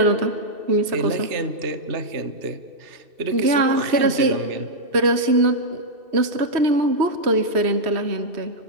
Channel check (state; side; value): late; left; 2.7 ms